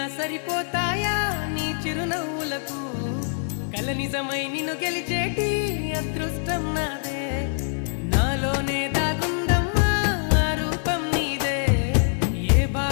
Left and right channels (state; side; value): silent; right; 56 dB below the other